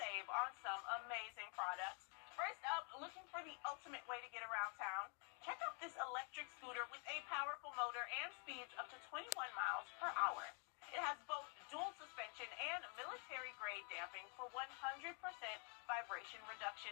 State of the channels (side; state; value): right; quieter; 38.7 dB